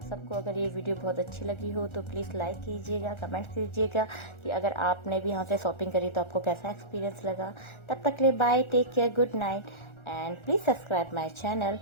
सबको अगर ये वीडियो बहुत अच्छी लगी हो तो प्लीज़ लाइक कीजिएगा, कमेंट कीजिएगा कि अगर आपने भी यहाँ से शॉपिंग करी तो आपको कैसा एक्सपीरियंस लगा। तब तक के लिए bye, take care, good night, and please subscribe my channel.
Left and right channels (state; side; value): late; right; 1.3 ms